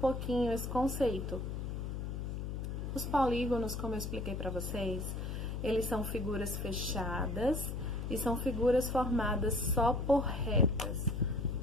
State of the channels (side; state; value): left; noise; hum, 4 dB below the sound